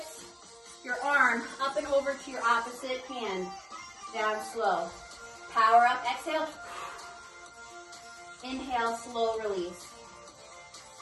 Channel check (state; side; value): identical; both; correlation 1.00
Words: Your arm up and over to your opposite hand. Down slow. Power up. Exhale. Inhale. Slow release.